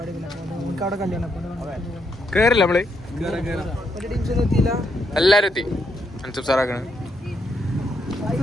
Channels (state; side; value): normal; both; correlation 0.78